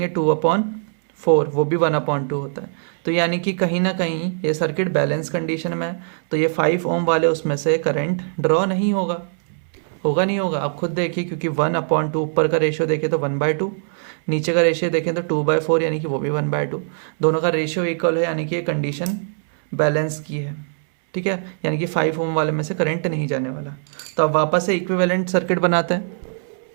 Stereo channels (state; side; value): silent; left; digital silence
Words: 2/4, वो भी 1/2 होता है। तो यानी कि कहीं ना कहीं ये सर्किट बैलेंस कंडीशन में है, तो ये 5 ओम वाले उसमें से करंट ड्रॉ नहीं होगा, नहीं होगा। आप खुद देखिए, क्योंकि 1/2 ऊपर का रेशियो देखें तो 1/2, नीचे का रेशियो देखें तो 2/4, यानी कि वो भी 1/2। दोनों का रेशियो इक्वल है, यानी कि ये कंडीशन बैलेंस की है, ठीक है। यानी कि 5 ओम वाले में से करंट नहीं जाने वाला। तो अब वापस से इक्विवेलेंट सर्किट बनाते हैं।